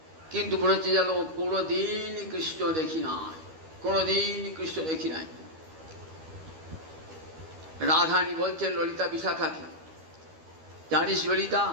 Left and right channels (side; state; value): left; late; 12 ms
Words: কিন্তু বলেছে যেন কোনোদিন কৃষ্ণ দেখি নাই, কোনোদিন কৃষ্ণ দেখি নাই। রাধানী বলছেন ললিতা বিশাখাকে, জানিস ললিতা,